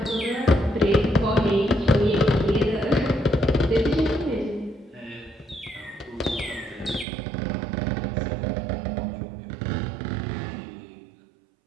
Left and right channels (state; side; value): drops out; left; at 7.1 s